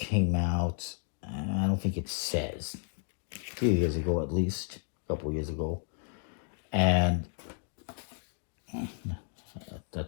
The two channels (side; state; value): right; silent; 56 dB below the other